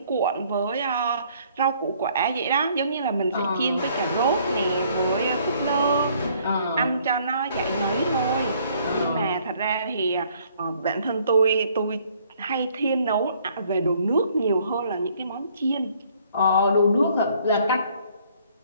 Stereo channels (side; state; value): both; inverted; correlation -0.62